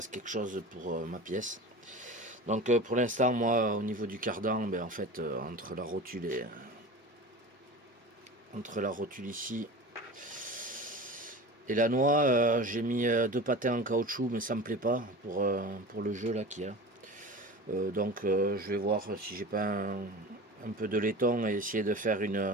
quelque chose pour ma pièce. Donc pour l'instant, moi, au niveau du cardan, ben, en fait, entre la rotule ici et la noix, j'ai mis deux patins en caoutchouc, mais ça me plaît pas pour le jeu là qu'il y a. Donc je vais voir si j'ai pas un peu de laiton et essayer de faire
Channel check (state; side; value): normal; both; correlation 0.33